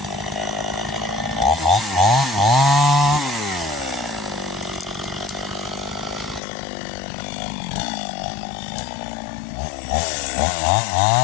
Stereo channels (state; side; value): drops out; right; at 6.4 s